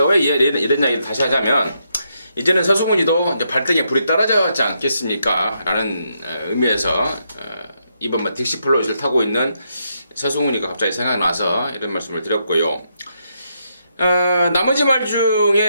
왜 이런 이야기를 다시 하자면, 이제는 서승훈이도 이제 발등에 불이 떨어졌지 않겠습니까? 라는 의미에서 이번 딕시 플롯을 타고 있는 서승훈이가 갑자기 생각나서 이런 말씀을 드렸고요. 나머지 말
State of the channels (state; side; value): inverted; both; correlation -0.79